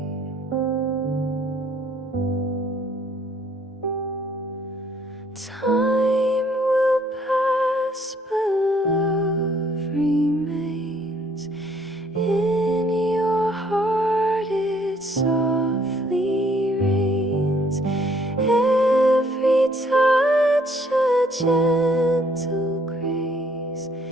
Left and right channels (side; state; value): both; normal; correlation 0.63